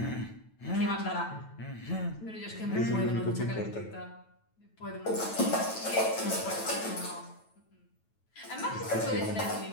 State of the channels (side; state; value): right; late; 9.1 ms